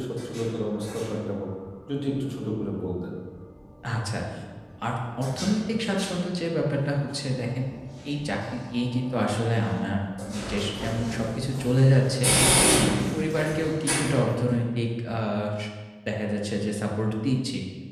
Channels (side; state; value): both; identical; correlation 1.00